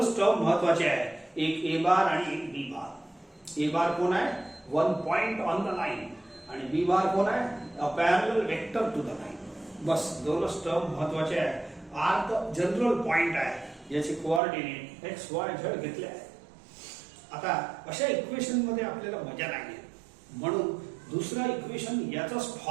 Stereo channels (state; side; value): drops out; left; at 14.4 s